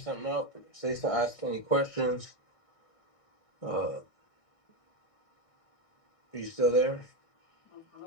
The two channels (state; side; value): late; right; 1.6 ms